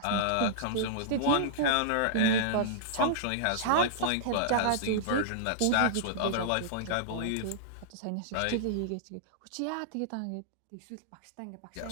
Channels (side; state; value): both; different; correlation -0.02